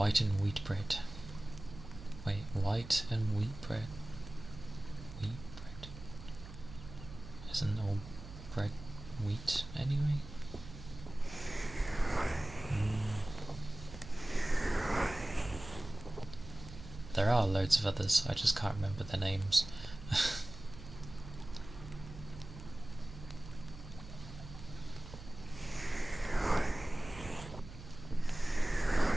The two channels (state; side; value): noise; right; hum, 13 dB below the sound